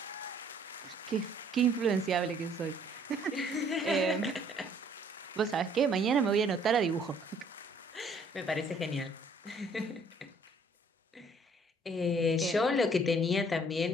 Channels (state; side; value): normal; both; correlation 0.60